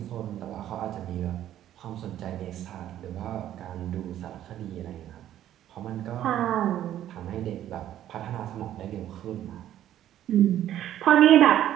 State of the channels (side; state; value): left; quieter; 11.9 dB